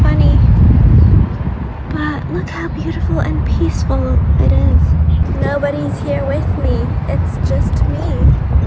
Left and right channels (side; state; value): both; identical; correlation 1.00